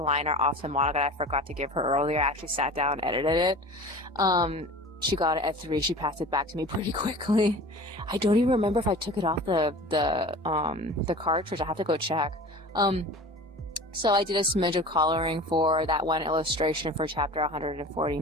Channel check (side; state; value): both; normal; correlation 0.38